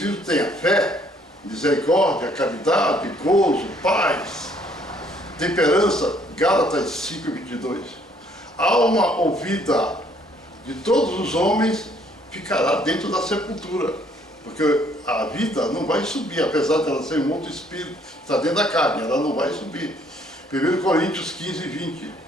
tem a fé, misericórdia, caridade, gozo, paz, temperança, Gálatas 5, 22. A alma ouvida de todos os homens ficará dentro da sepultura, porque a vida não vai subir, apesar de ela ser um outro espírito, está dentro da carne, ela não vai subir. 1 Coríntios 15, 20.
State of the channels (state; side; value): normal; both; correlation 0.64